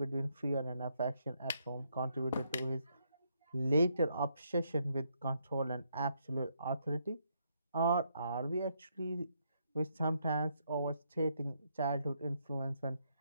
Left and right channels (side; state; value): both; inverted; correlation -0.75